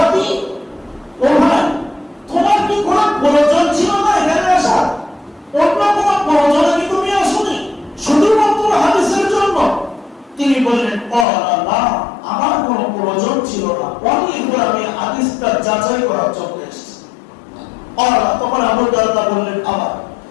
ও ভাই, তোমার কি কোনো প্রয়োজন ছিল না এখানে আসার? অন্য কোনো প্রয়োজনে কি তুমি আসোনি, শুধুমাত্র হাদিসের জন্য? তিনি বললেন, ক্বালা লা, আমার কোনো প্রয়োজন ছিল না, আমি হাদিসটা যাচাই করার জন্য এসেছি। তখন আবু দারদা বললেন,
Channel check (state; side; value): drops out; right; at 11.2 s